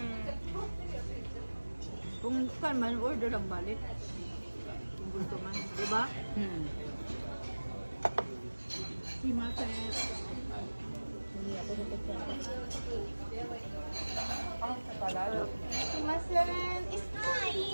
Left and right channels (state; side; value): inverted; both; correlation -1.00